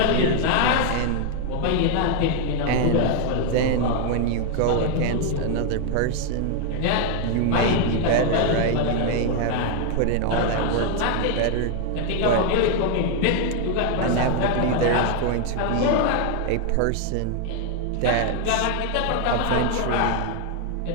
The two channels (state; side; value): different; both; correlation 0.00